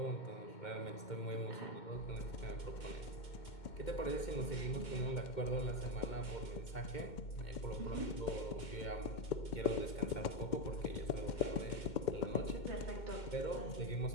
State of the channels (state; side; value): late; right; 2.1 ms